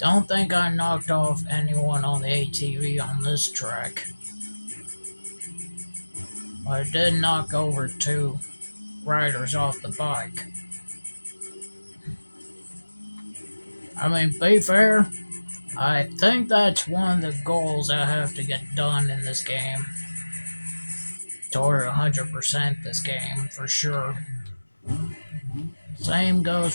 think I knocked off anyone on the ATV on this track. But I did knock over 2 riders off the bike. I mean, be fair, I think that's one of the goals I have to get done in this game. Toward 100% this game, for sure. Same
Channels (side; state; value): both; inverted; correlation -1.00